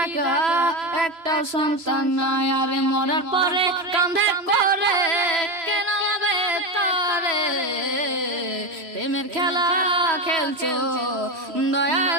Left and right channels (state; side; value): late; left; 3.0 ms